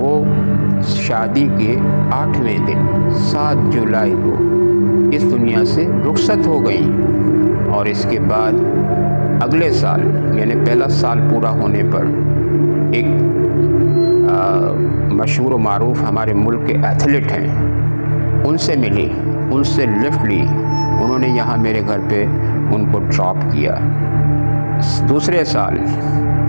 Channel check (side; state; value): both; inverted; correlation -1.00